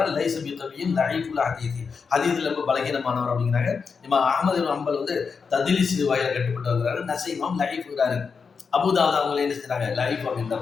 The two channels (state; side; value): quieter; right; 5.5 dB